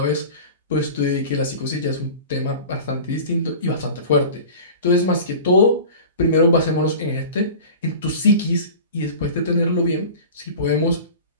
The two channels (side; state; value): both; inverted; correlation -0.37